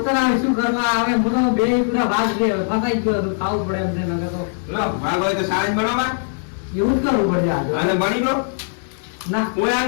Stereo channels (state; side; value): silent; right; digital silence